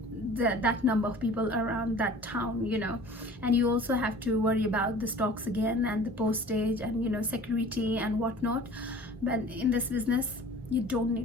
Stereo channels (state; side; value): normal; both; correlation 0.44